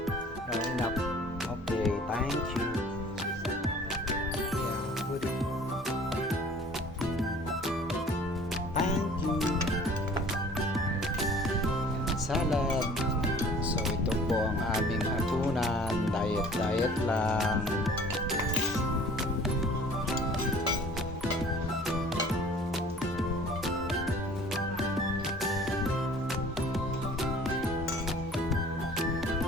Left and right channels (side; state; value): both; normal; correlation 0.49